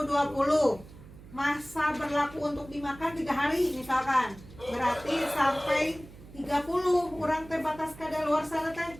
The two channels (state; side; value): noise; right; hum, 19 dB below the sound